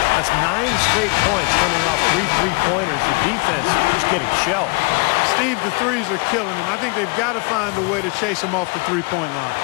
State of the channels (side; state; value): right; quieter; 30.8 dB